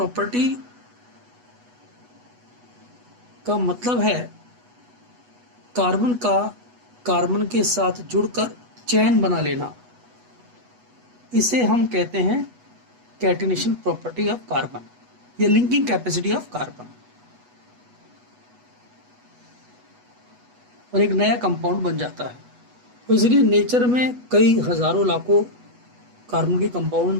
का मतलब है कार्बन का कार्बन के साथ जुड़कर चेन बना लेना. इसे हम कहते हैं कैटिनेशन प्रॉपर्टी ऑफ कार्बन या लिंकिंग कैपेसिटी ऑफ कार्बन. और एक नया कंपाउंड बन जाता है. तो इसलिए नेचर में कई हजारों लाखों कार्बन के कंपाउंड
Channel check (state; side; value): late; left; 8.2 ms